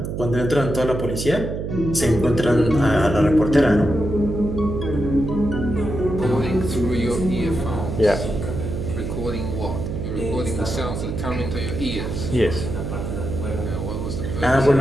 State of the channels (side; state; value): right; noise; hum, 4 dB below the sound